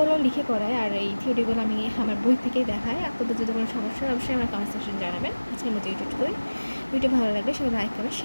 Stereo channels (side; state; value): both; inverted; correlation -1.00